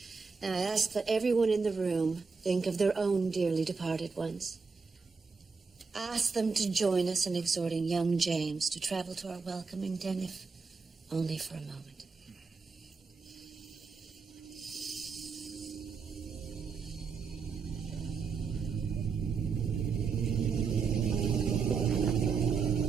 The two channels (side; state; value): left; quieter; 5.0 dB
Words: Now I ask that everyone in the room think of their own dearly departed ones. Ask them to join us in exhorting young James to travel to our welcoming den, if only for a moment.